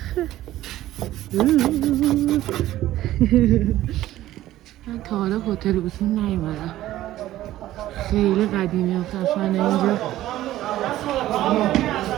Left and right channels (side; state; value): left; quieter; 14.5 dB